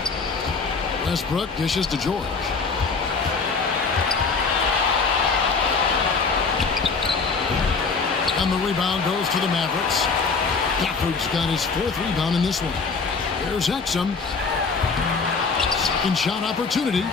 Westbrook dishes to George. And the rebound goes to the Mavericks. Gafford's got his 4th rebound in this one. Here's Exum. Second shot opportunity.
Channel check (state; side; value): quieter; right; 4.7 dB